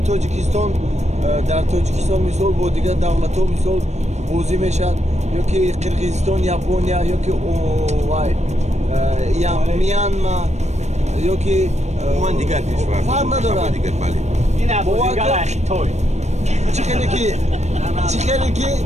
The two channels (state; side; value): late; left; 0.33 ms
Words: در تاجیکستان مثال با دیگر دولت‌ها مثال بازی میشد یا که قرقیزستان یابونیا یا که میانمار یا که من دیگر کشور فرق ندارد. دیگر بله این بازیگر اخی توی